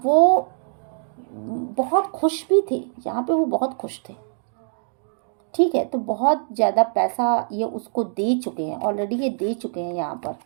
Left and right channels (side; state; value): left; silent; digital silence